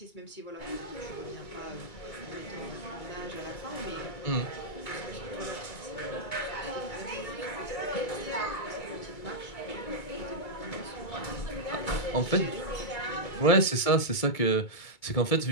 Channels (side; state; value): right; late; 2.2 ms